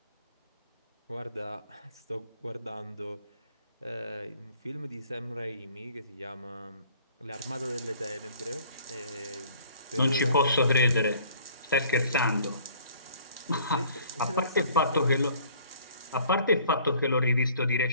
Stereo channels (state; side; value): inverted; both; correlation -0.55